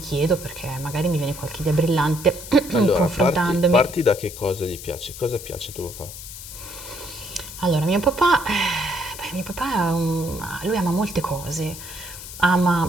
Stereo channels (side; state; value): left; noise; hiss, 12 dB below the sound